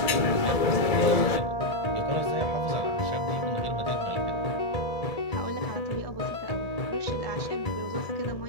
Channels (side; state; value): right; late; 1.7 ms